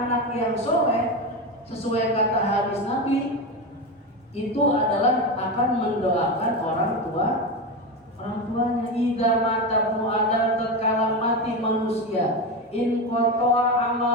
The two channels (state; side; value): normal; both; correlation 0.17